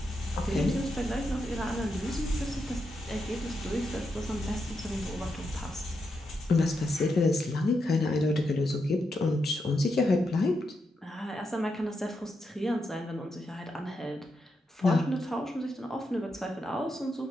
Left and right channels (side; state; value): both; normal; correlation 0.84